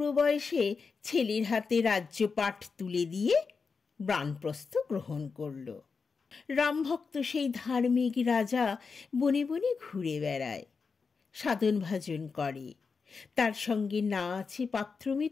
বয়সে ছেলের হাতে রাজ্যপাট তুলে দিয়ে বানপ্রস্থ গ্রহণ করল। রামভক্ত সেই ধার্মিক রাজা বনে বনে ঘুরে বেড়ায়, সাধন ভাজন করে। তার সঙ্গে না আছে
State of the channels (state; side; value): quieter; right; 5.0 dB